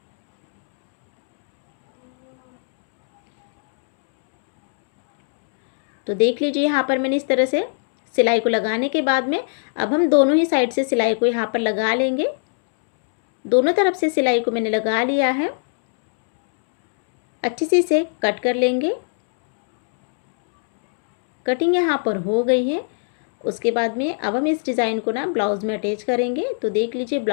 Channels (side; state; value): right; silent; 66 dB below the other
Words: तो देख लीजिए यहाँ पर मैंने इस तरह से सिलाई को लगाने के बाद में अब हम दोनों ही साइड से सिलाई को यहाँ पर लगा लेंगे। दोनों तरफ से सिलाई को मैंने लगा लिया है। अच्छे से इसे कट कर लेंगे। कटिंग यहाँ पर हो गई है। उसके बाद में अब हम इस डिज़ाइन को ना ब्लाउज़ में अटैच करेंगे। तो देख लीजिए,